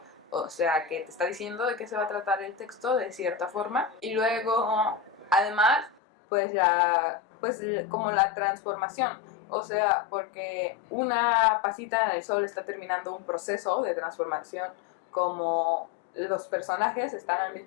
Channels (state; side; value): drops out; right; at 6.0 s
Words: o sea que te está diciendo de qué se va a tratar el texto de cierta forma. Y luego además pues como la transformación, o sea, porque una pasita en el sol está terminando un proceso de transformación, como los personajes están al